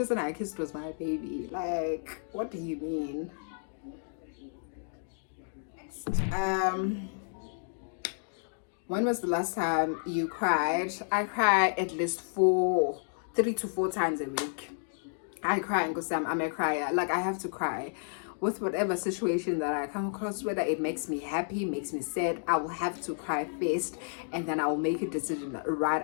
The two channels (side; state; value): right; silent; digital silence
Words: I kissed was my baby. Like, what do you mean? When was the last time you cried? I cry at least 3 to 4 times a week. I cry and go, Sam, I'm a crier. Like, I have to cry. with whatever situation that I come across, whether it makes me happy, makes me sad, I will have to cry first, and then I will make a decision right